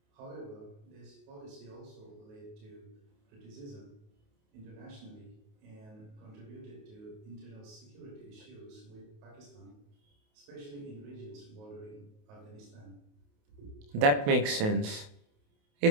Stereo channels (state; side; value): late; left; 28 ms